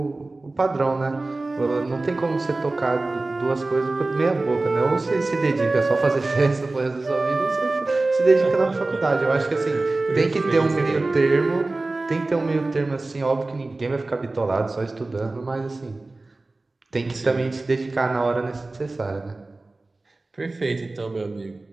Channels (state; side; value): quieter; left; 3.2 dB